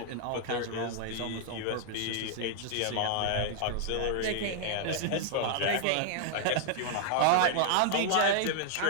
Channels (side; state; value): both; different; correlation 0.00